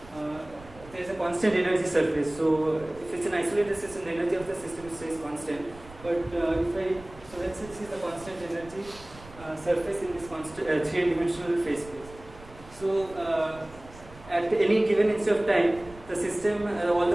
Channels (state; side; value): noise; right; rumble, 19 dB below the sound